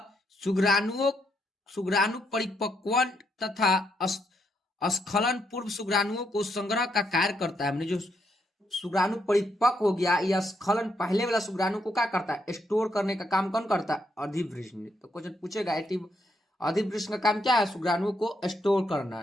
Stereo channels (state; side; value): normal; both; correlation 0.77